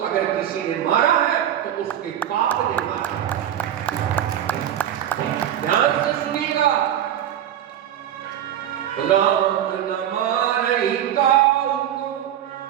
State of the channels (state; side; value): quieter; left; 10.8 dB